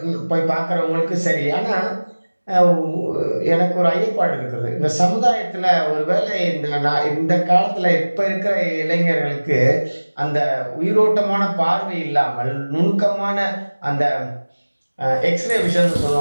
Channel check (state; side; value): inverted; both; correlation -1.00